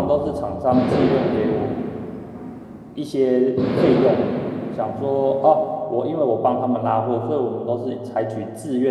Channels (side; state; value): both; identical; correlation 1.00